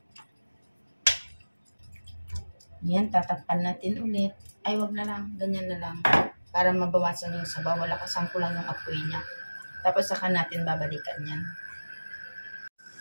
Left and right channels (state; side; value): inverted; both; correlation -1.00